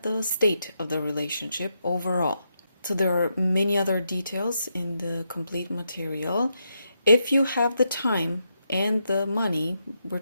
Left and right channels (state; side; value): inverted; both; correlation -0.82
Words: the state of the relationship overall. So there are many other details in the complete material. If you have the time and the money, we're